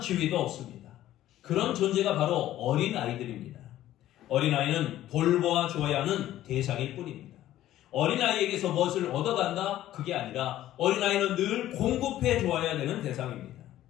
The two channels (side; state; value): right; quieter; 13.6 dB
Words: 없습니다. 그런 존재가 바로 어린아이들입니다. 어린아이는 돌보아 주어야 하는 대상일 뿐입니다. 어린아이에게서 무엇을 얻어간다? 그게 아니라 어린아이는 늘 공급해 주어야 되는 대상입니다.